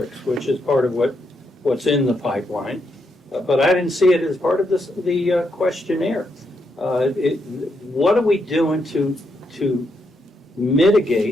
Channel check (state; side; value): normal; both; correlation 0.80